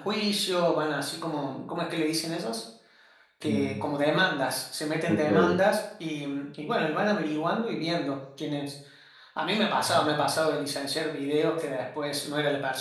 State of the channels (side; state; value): both; identical; correlation 1.00